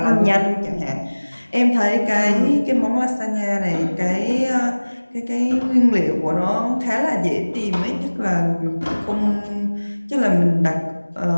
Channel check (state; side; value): inverted; both; correlation -1.00